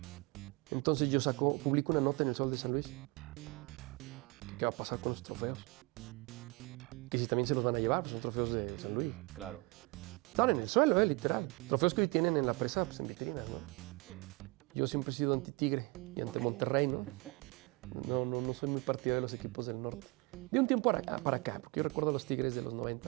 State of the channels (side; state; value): left; quieter; 26.8 dB